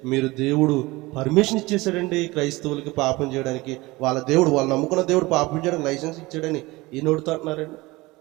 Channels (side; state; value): left; quieter; 21.6 dB